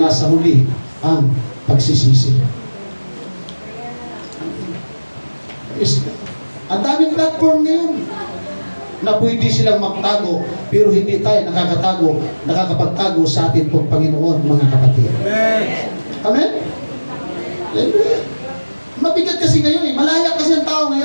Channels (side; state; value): both; inverted; correlation -1.00